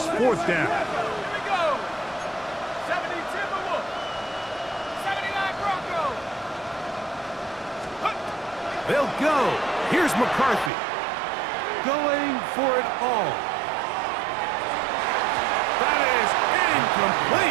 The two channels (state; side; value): drops out; left; at 10.7 s